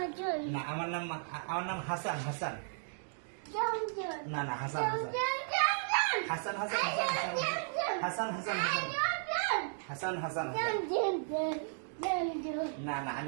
না, আমার নাম হাসান। হাসান না না, হাসান হাসান হাসান হাসান হাসান হাসান হাসান না না,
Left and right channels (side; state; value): left; silent; digital silence